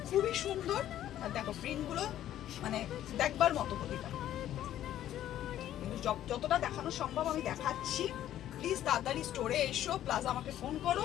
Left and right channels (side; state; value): right; quieter; 12.1 dB